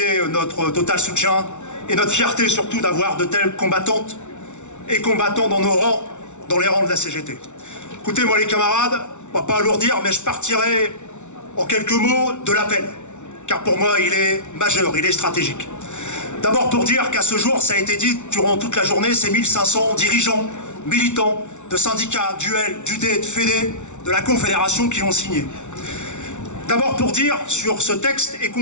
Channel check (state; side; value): late; right; 0.84 ms